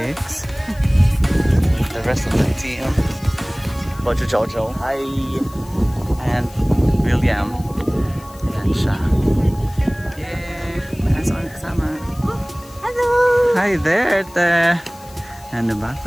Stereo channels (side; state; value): left; noise; hiss, 23 dB below the sound